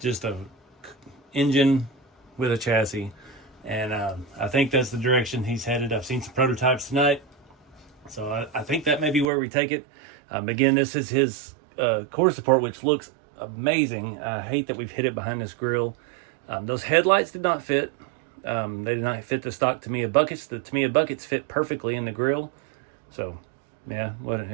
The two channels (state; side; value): drops out; left; at 9.3 s